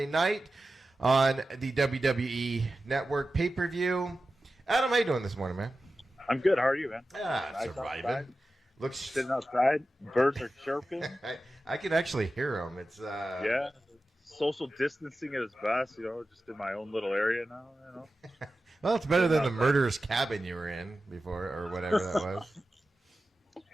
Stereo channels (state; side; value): normal; both; correlation 0.93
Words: night on the WWE Network pay-per-view. Adam, how you doing this morning, man? I'm good. How are you, man? Surviving. Looks sitting outside. Birds are chirping. I can actually hear them. It's yeah. Social distancing at its best, just in my own little area now, Well, it's better than the murderer's cabin you were in before, or whatever that was.